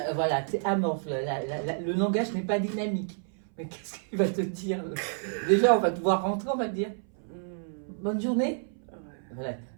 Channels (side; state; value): left; silent; 57 dB below the other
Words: voilà, t'es amorphe, le langage n'est pas dynamique. Mais qu'est-ce qu'il va te dire? Déjà, on va te voir rentrer, on va te dire, Hmm. bonne journée. Ouais, Voilà,